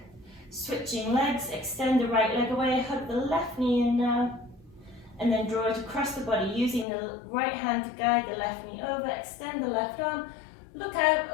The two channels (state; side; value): drops out; right; at 6.9 s